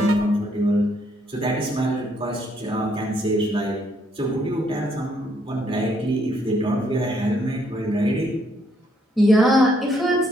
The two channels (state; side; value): normal; both; correlation 0.71